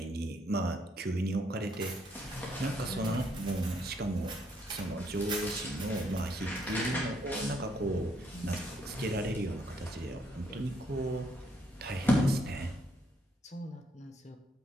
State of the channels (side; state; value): both; normal; correlation 0.72